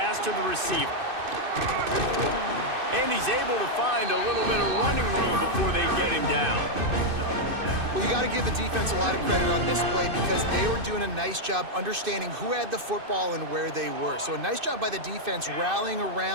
to the receiver. And he's able to find a little bit of running room before they get him down. Well, you got to give the defense a lot of credit on this play because they were doing a nice job understanding who had the football and where they were. So a nice job by the defense rallying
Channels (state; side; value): late; left; 2.6 ms